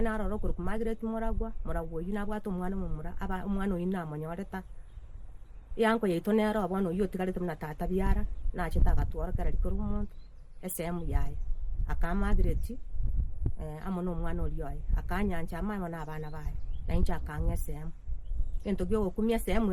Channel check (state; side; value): identical; both; correlation 1.00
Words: narora okoroku Margaret Moragwa oyi nabwate omwana omomura omwana oyi namonyoreta yanko yaito nero bono oyi otigarete buna tata biara nachete agatwara kera rikoro omonto esemu yaye aka Margaret amo n'omwana oria oye akanyanja ama amo n'abana baye nainche akang'a esemu gento gia ogokumia esemu